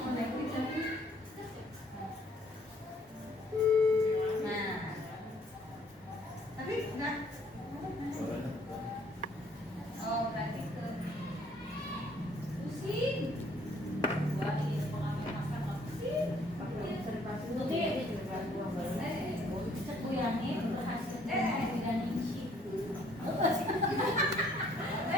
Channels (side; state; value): both; normal; correlation 0.62